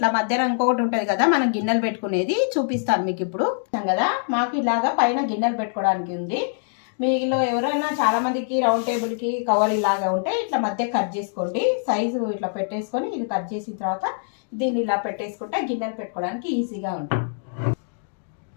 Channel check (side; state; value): right; silent; digital silence